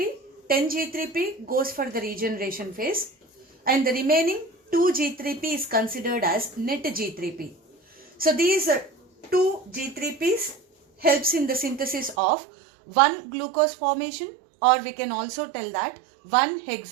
10 G3P goes for the regeneration phase and the remaining 2 G3P is considered as net G3P. So these 2 G3Ps helps in the synthesis of 1 glucose formation, or we can also tell that 1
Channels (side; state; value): left; drops out; at 12.2 s